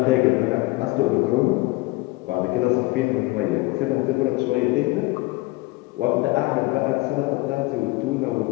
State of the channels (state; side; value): quieter; right; 22.1 dB